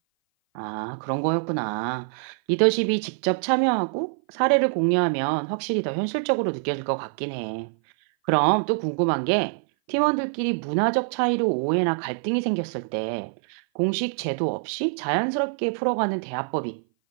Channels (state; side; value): silent; left; 57 dB below the other